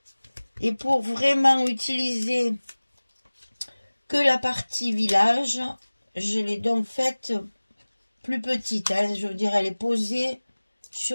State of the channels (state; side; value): inverted; both; correlation -1.00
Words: et pour vraiment utiliser que la partie village, je l'ai donc faite plus petite, hein, je veux dire elle est posée